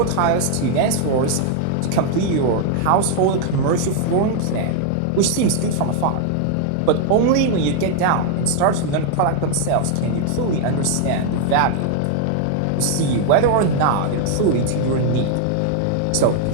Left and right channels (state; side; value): different; both; correlation 0.00